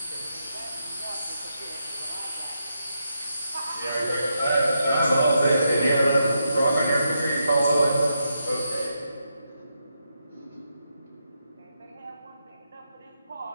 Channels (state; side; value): inverted; both; correlation -0.82